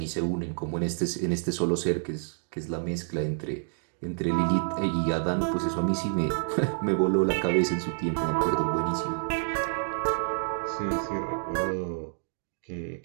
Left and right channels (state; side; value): silent; left; digital silence